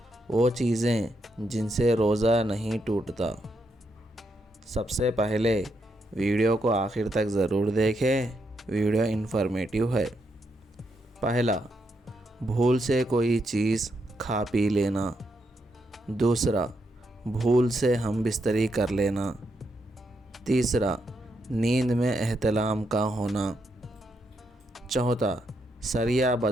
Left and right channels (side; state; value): both; normal; correlation 0.80